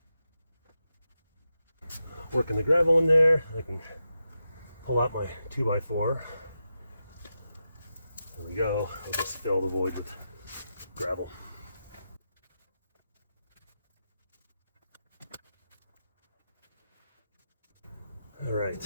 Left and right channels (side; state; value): both; inverted; correlation -0.89